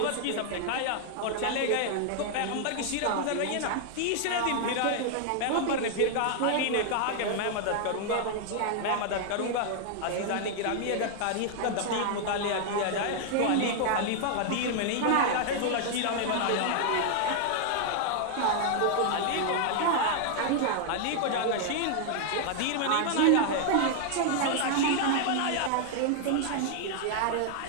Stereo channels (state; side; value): different; both; correlation 0.00